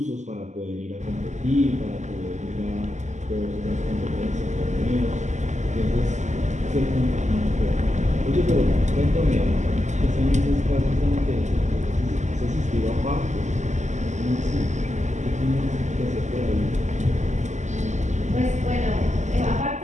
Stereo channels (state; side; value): late; left; 0.34 ms